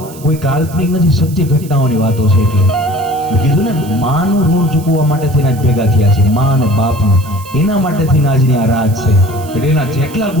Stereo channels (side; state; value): right; noise; hiss, 19 dB below the sound